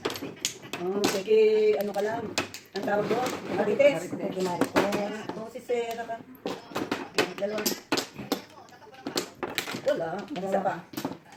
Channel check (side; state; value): both; identical; correlation 1.00